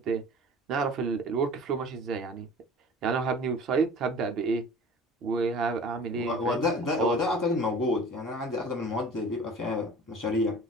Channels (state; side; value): normal; both; correlation 0.43